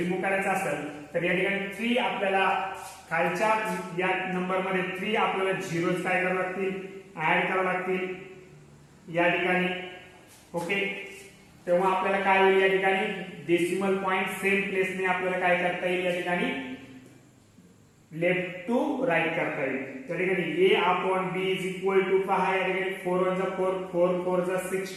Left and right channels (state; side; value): identical; both; correlation 1.00